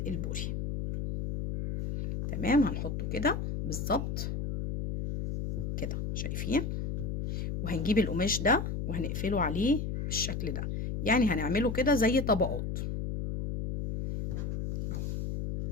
البوري. تمام، هنحطه كده بالظبط كده، شايفين؟ وهنجيب القماش ده وهنقفله عليه بالشكل ده، يعني هنعمله كده زي طبقات.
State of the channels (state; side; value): noise; left; hum, 3 dB below the sound